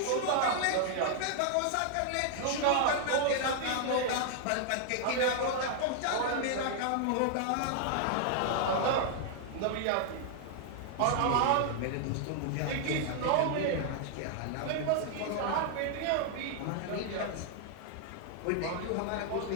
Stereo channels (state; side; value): different; both; correlation 0.00